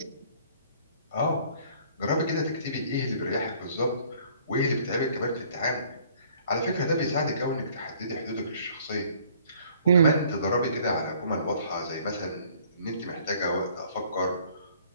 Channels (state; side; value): inverted; both; correlation -0.57